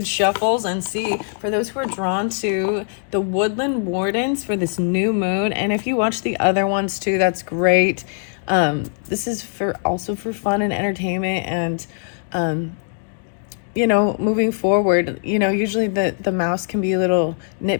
shuffles and see for those who are drawn to the Woodland Wardens for this new moon. And if you watch the other ones too, that's great. This is also for fun and entertainment and moving forward, usually the mouse can be a little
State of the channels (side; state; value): right; silent; digital silence